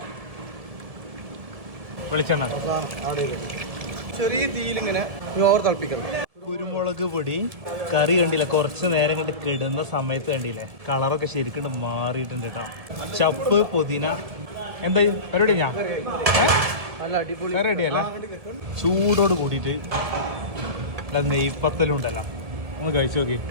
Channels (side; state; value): left; late; 1.7 ms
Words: വെളിച്ചെണ്ണ ചെറിയ തീയിലിങ്ങനെ ഓവർ തിളപ്പിക്കണം. കുരുമുളക് പൊടി. കറി കണ്ടില്ല, കുറച്ച് നേരം കണ്ട് കിടുന്ന സമയത്ത് കണ്ടില്ലേ കളറൊക്കെ ശരിക്കും മാറിയിട്ടുണ്ട് കേട്ടോ. ചപ്പ്, പുതിന. എന്താ പരിപാടി? ഞാൻ നല്ല അടിപൊളി റെഡിയല്ല. ചൂടോട് കൂടിയിട്ട് നെയ്പ്പത്തലും ഉണ്ടല്ലോ, ഒന്ന് കഴിച്ചു നോക്കി.